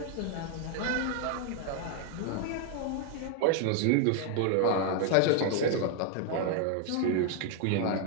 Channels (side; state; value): both; different; correlation 0.00